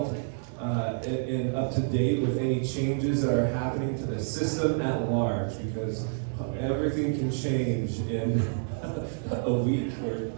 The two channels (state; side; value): silent; left; digital silence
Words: and up to date with any changes that are happening to the system at large, because everything can change in a week or